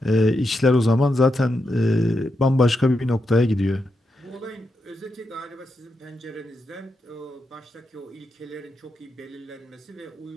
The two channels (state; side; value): normal; both; correlation 0.85